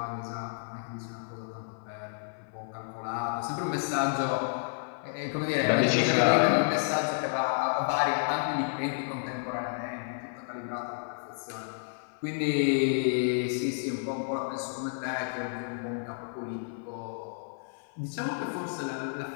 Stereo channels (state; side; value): silent; right; 57 dB below the other